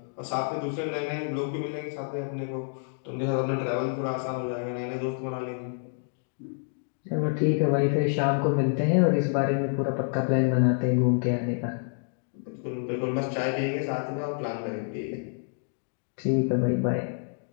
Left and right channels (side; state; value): right; silent; 59 dB below the other